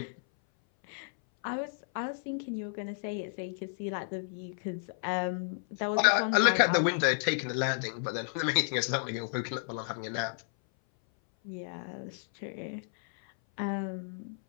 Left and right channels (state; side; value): silent; right; 56 dB below the other